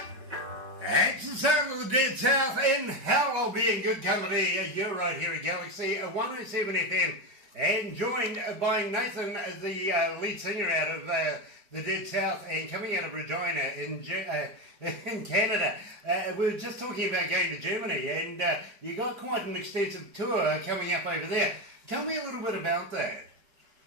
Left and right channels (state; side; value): late; left; 4.8 ms